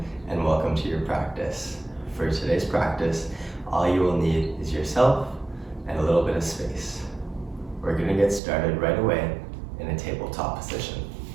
and welcome to your practice. For today's practice, all you will need is yourself and a little bit of space. We're going to get started right away in a tabletop position.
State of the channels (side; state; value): left; drops out; at 8.4 s